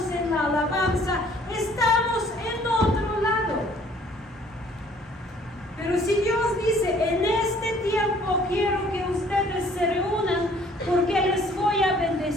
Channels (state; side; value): normal; both; correlation 0.58